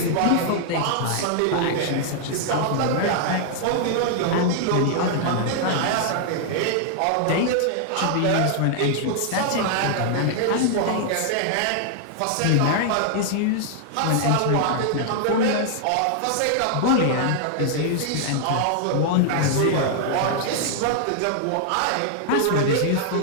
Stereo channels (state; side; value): different; both; correlation 0.00